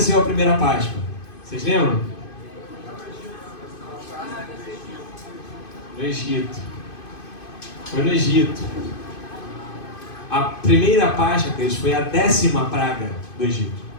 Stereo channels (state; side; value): late; right; 2.5 ms